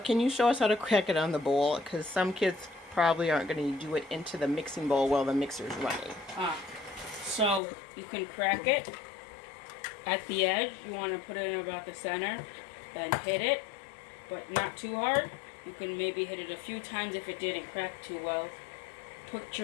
you show us how to crack it on the bowl? Because some kids probably aren't going to do it into the mixing bowl while the mixer's running. So you can crack it at the edge. You want to put it in about the center, then hit it, but not too hard. You can maybe hit it a few times if it didn't crack too well. Put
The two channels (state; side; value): drops out; right; at 7.6 s